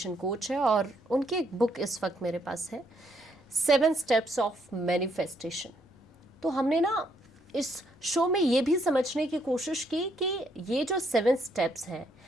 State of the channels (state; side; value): normal; both; correlation 0.72